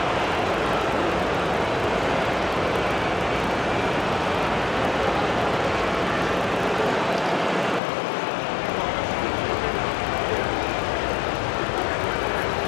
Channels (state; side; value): drops out; right; at 7.8 s